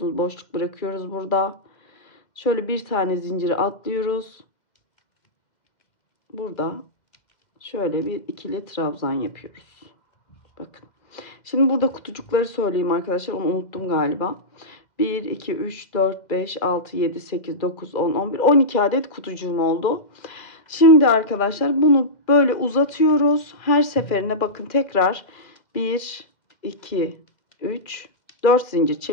boşluk bırakıyoruz burada. Şöyle bir tane zinciri atlıyoruz. Burada şöyle bir ikili trabzan yapıyoruz. Bakın. Şimdi burada kutucukları söyleyeyim arkadaşlar. Onu unuttum galiba. 1, 2, 3, 4, 5, 6, 7, 8, 9, 10, 11, 12 adet kutucuğum oldu. Şimdi arkadaşlar bunu böyle uzatıyoruz. Her seferinde bakın tekrar 1, 2, 3, 4 zincir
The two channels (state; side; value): late; right; 2.0 ms